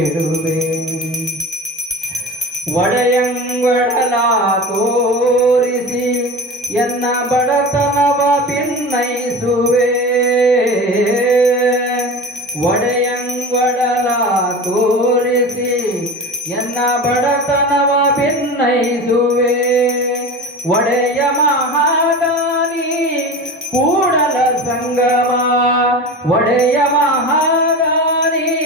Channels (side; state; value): both; normal; correlation 0.31